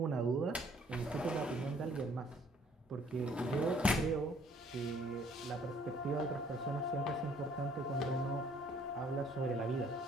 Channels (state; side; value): normal; both; correlation 0.60